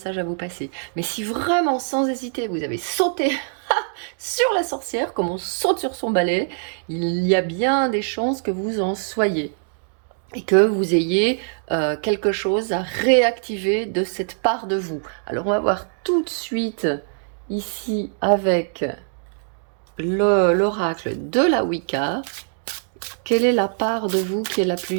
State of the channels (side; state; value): left; silent; digital silence